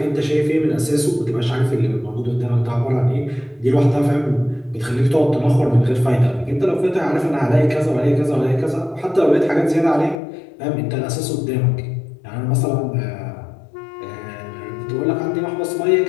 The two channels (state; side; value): drops out; right; at 10.2 s